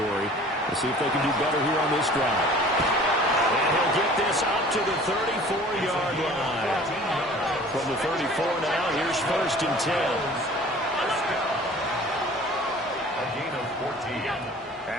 Let's see if they can do better here on this drive. And he'll get this up to the 34-yard line. From the 34 now, here's 1st and 10. A gain of 14.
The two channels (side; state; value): both; normal; correlation 0.47